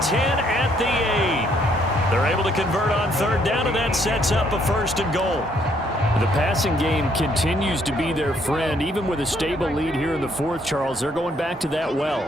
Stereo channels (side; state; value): both; normal; correlation 0.68